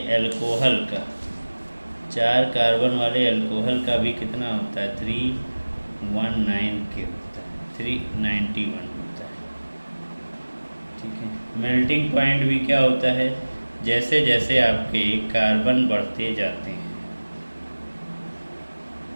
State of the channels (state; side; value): inverted; both; correlation -1.00